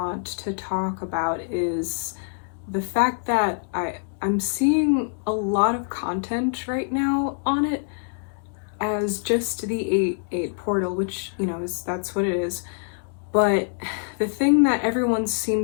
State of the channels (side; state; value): right; silent; digital silence